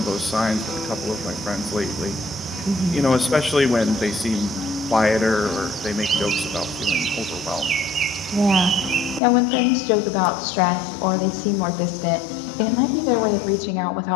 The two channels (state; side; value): drops out; right; at 9.2 s